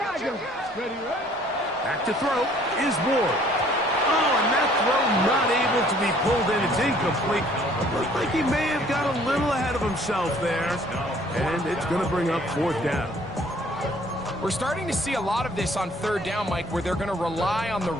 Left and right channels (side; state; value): both; normal; correlation 0.58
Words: Ready. Back to throw is Ward. Oh, and that throw not able to be pulled in. It's incomplete. Looks like he may have got a little ahead of himself there. And it's going to bring up 4th down. We're starting to see a lot of this on 3rd down, Mike, where they're going to rely on the